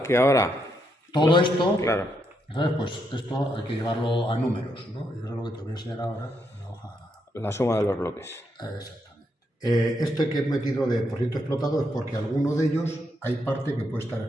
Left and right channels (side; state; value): both; normal; correlation 0.79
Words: que ahora... Todo esto, claro, ¿sabes? Pues esto hay que llevarlo a números, ¿no? Y eso es lo que te voy a enseñar ahora en la hoja. la suma de los bloques. Exactamente. Esto que he metido de por ciento explotado es porque alguno de ellos hay parte que puede estar